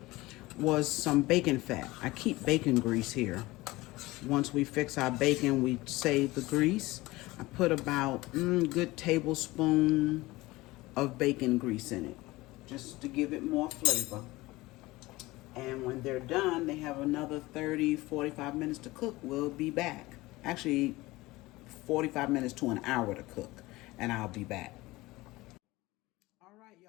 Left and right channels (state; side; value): quieter; right; 20.1 dB